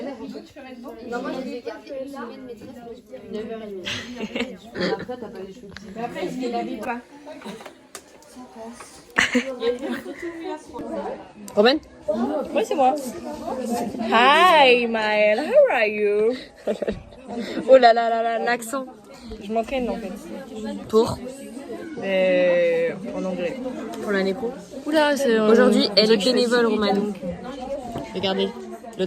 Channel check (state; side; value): identical; both; correlation 1.00